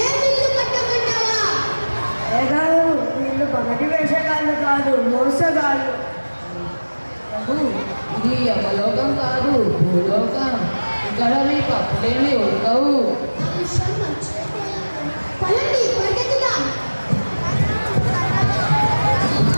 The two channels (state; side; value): inverted; both; correlation -1.00